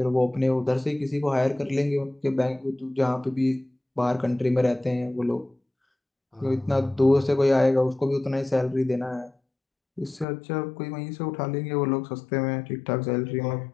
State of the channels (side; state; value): right; drops out; at 10.2 s